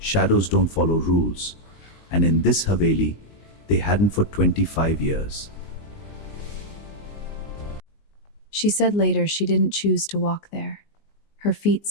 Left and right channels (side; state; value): right; late; 19 ms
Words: don't follow rules, and in this Haveli, they hadn't for 25 years. She said later she didn't choose to walk there. Her feet